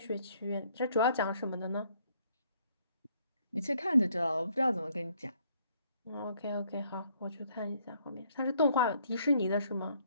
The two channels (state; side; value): inverted; both; correlation -0.66